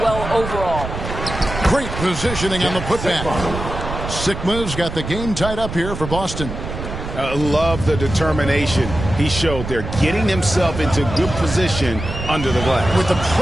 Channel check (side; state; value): right; noise; rumble, 7 dB below the sound